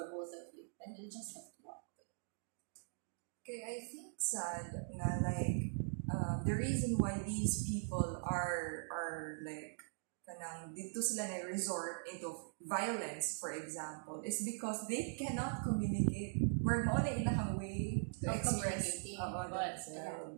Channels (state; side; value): silent; left; digital silence